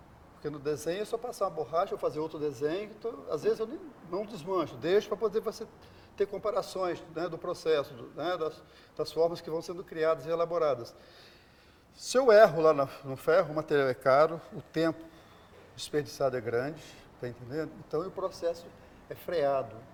Porque no desenho é só passar uma borracha, ou fazer outro desenho, então, às vezes eu não desmancho, deixo para poder você ter comparações, né, do processo, né, das formas que vão sendo criadas e elaboradas. Se eu erro lá no ferro, o material é caro, o tempo desperdiçado é grande, tá entendendo? Então o processo é freado.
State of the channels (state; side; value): identical; both; correlation 1.00